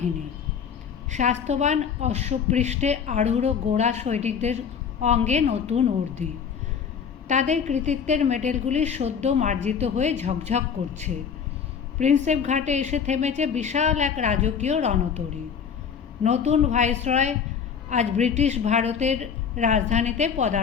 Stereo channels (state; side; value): quieter; right; 7.0 dB